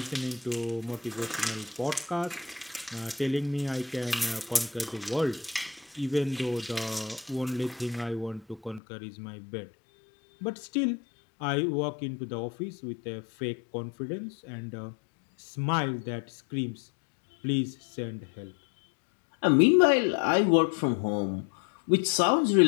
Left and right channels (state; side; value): drops out; right; at 8.8 s